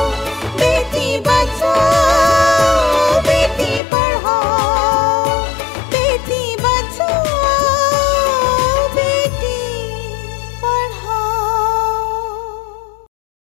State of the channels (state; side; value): drops out; right; at 3.8 s